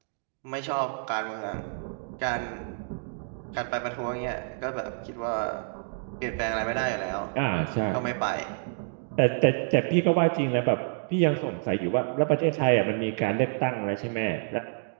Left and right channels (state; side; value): silent; left; digital silence